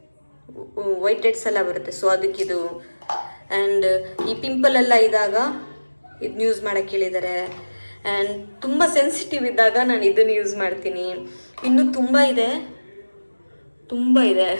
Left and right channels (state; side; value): inverted; both; correlation -1.00